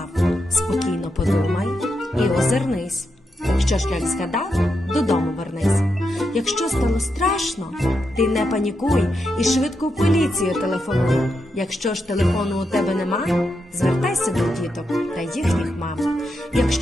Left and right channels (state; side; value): normal; both; correlation 0.85